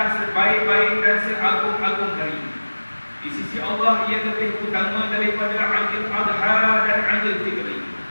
sebaik-baik dan seagung-agung hari. Di sisi Allah ia lebih utama daripada Aidil Adha dan Aidil Fitri.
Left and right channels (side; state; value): both; inverted; correlation -1.00